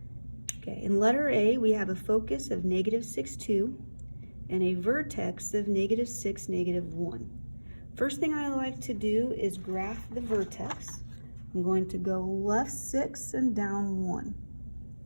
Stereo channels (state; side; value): inverted; both; correlation -1.00